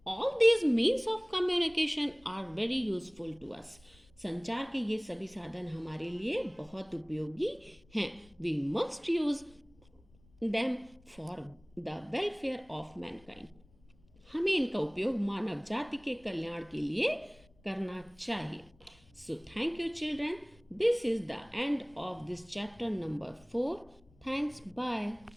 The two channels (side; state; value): left; noise; rumble, 28 dB below the sound